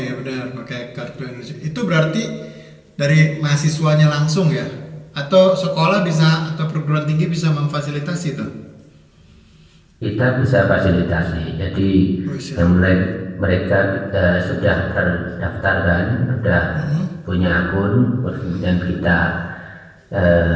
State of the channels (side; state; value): both; identical; correlation 1.00